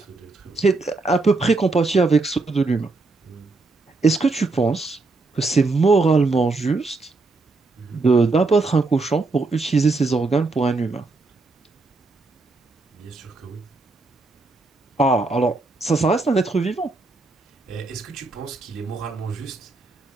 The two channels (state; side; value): quieter; left; 3.5 dB